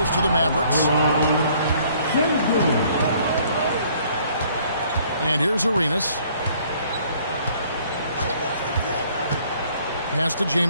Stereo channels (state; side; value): inverted; both; correlation -0.60